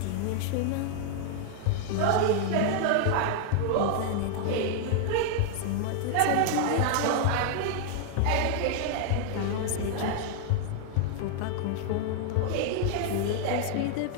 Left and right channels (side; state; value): both; different; correlation 0.00